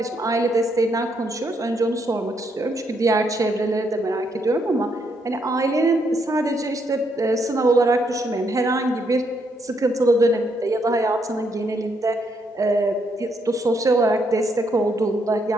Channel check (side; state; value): both; normal; correlation 0.75